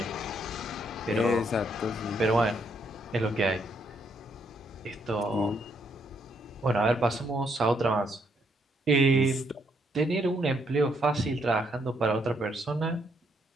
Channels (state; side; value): normal; both; correlation 0.73